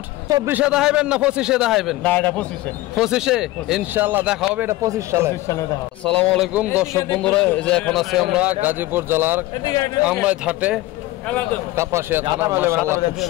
24 এ দেখাইবেন না 25 এ দেখাইবেন না এটা 25 এ ইনশাআল্লাহ দেখা হবে এটা 25 সালে দেখা আসসালামু আলাইকুম দর্শক বন্ধুরা এই যে এখন আছি আমরা গাজীপুর জেলার আমরাই ঘাটে কাপাসিয়া থানা মাশাআল্লাহ খুব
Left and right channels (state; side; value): quieter; right; 17.7 dB